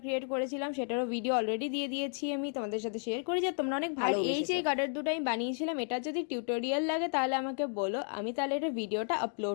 ক্রিয়েট করেছিলাম, সেটারও ভিডিও অলরেডি দিয়ে দিয়েছি, আমি তোমাদের সাথে শেয়ার করি, যে তোমরা অনেক ভালো। এই যে গার্ডার দুটো আমি বানিয়েছিলাম, এটা যদি টিউটোরিয়াল লাগে তাহলে আমাকে বলো, আমি তাহলে এটা ভিডিওটা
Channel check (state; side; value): silent; right; 56 dB below the other